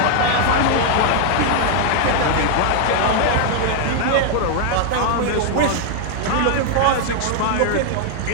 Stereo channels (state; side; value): different; both; correlation 0.00